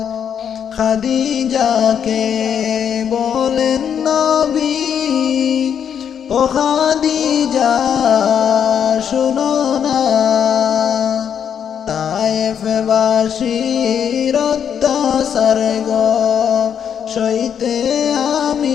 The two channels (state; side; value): quieter; right; 8.2 dB